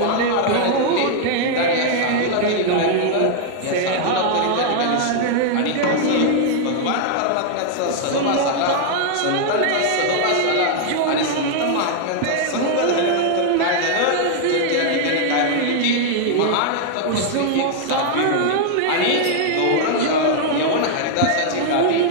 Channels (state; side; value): different; both; correlation 0.00